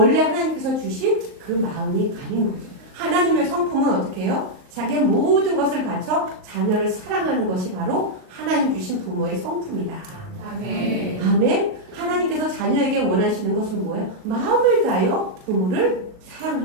하나님께서 주신 그 마음이 아닌 거죠. 하나님의 성품은 어떻게 해요? 자기의 모든 것을 바쳐 자녀를 사랑하는 것이 바로 하나님 주신 부모의 성품이다. 아멘. 아멘. 하나님께서 자녀에게 원하시는 것은 뭐예요? 마음을 다하여 부모를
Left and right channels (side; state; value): left; late; 39 ms